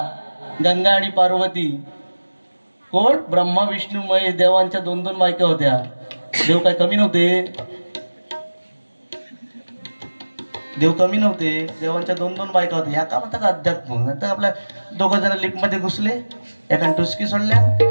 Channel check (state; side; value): inverted; both; correlation -1.00